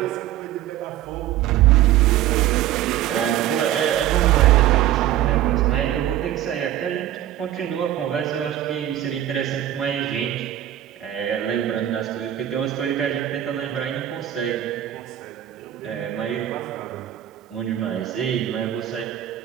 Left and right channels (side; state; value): left; quieter; 12.5 dB